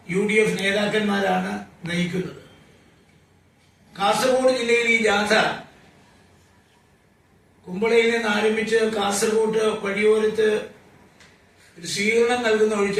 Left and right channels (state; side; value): identical; both; correlation 1.00